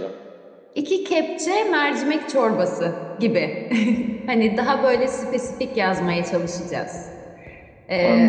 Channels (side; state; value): both; identical; correlation 1.00